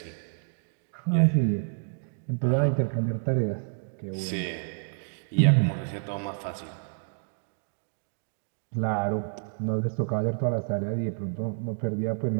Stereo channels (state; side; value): silent; left; digital silence